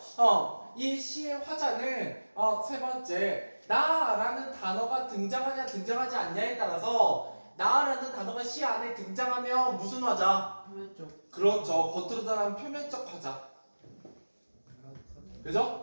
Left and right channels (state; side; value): inverted; both; correlation -1.00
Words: 이 시의 화자는 세 번째, 나라는 단어가 등장하냐 등장하지 않냐에 따라서 나라는 단어가 시 안에 등장하면 무슨 화자? 표면적. 그렇죠. 겉으로 드러나는 표면적 화자.